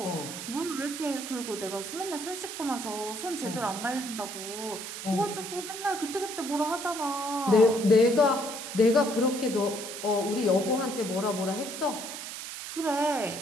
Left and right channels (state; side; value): noise; right; hiss, 8 dB below the sound